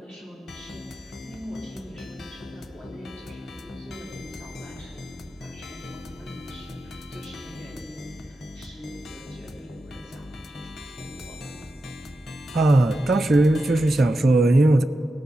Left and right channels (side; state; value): both; normal; correlation 0.90